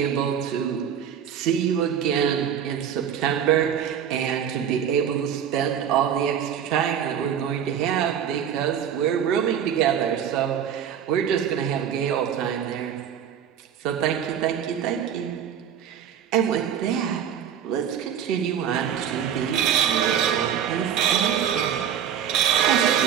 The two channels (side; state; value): left; quieter; 8.8 dB